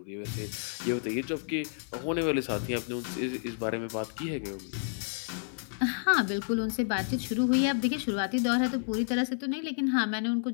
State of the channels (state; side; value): silent; right; 55 dB below the other